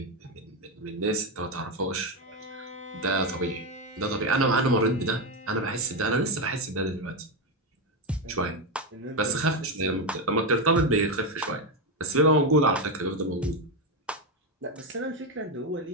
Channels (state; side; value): normal; both; correlation 0.09